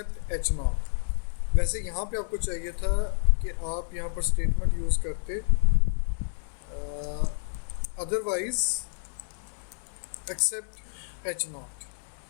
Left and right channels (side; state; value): right; silent; 59 dB below the other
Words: एच नॉट। वैसे यहाँ पे आपको चाहिए था कि आप यहाँ पर स्टेटमेंट यूज़ करते अदरवाइज एक्सेप्ट एच नॉट।